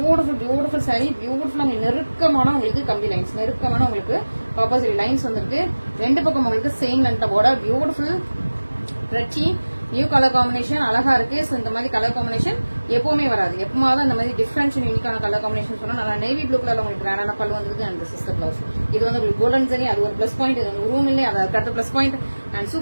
சாரி, பியூட்டிஃபுல்லா நெருக்கமான உங்களுக்கு கம்பி லைன்ஸ், நெருக்கமான உங்களுக்கு காப்பர் சாரி லைன்ஸ் வந்திருக்கு. ரெண்டு பக்கம் உங்களுக்கு சேம் லென்த்ல பார்டர். பியூட்டிஃபுல் பிரெச்சி நியூ கலர் காம்பினேஷன் அழகா இருக்கு. ஸோ இந்த மாதிரி கலர் காம்பினேஷன் எப்பவுமே வராது. எப்பமாவது இந்த மாதிரி டிஃபரன்ஸ் யூனிக்கான கலர் காம்பினேஷன் சொன்னா நல்லா நேவி ப்ளூ கலர்ல உங்களுக்கு கிராண்டான பல்லு வந்திருக்கு. அண்ட் சிஸ்டர் பிளவுஸ் இது வந்து உங்களுக்கு கோல்டன் சரி, அது ஒரு பிளஸ் பாயிண்ட். இது வந்து ரூம் இல்லை, அது அடுத்த பிளஸ் பாயிண்ட். அண்ட்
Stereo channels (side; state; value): both; inverted; correlation -1.00